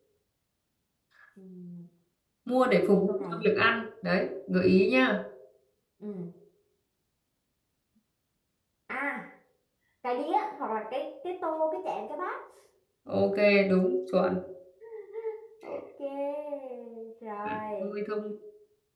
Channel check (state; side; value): identical; both; correlation 1.00